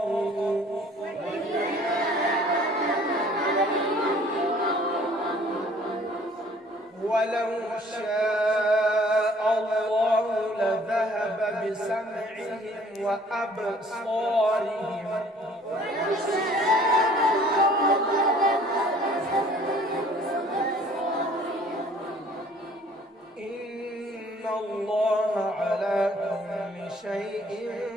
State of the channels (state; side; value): normal; both; correlation 0.55